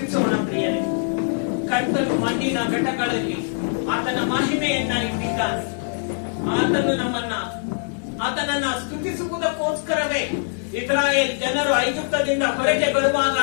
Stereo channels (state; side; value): silent; right; digital silence